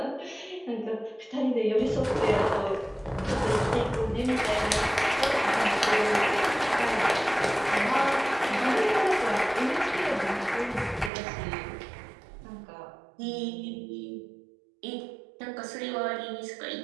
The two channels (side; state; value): left; drops out; at 11.1 s